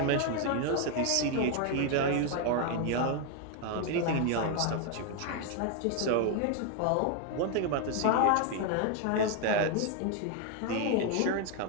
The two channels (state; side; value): different; both; correlation 0.01